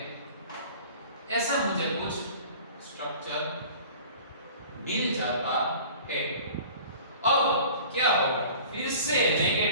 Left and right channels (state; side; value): inverted; both; correlation -0.44